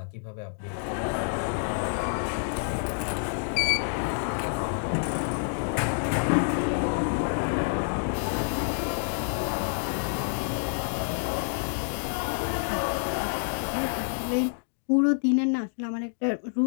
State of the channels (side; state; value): right; silent; digital silence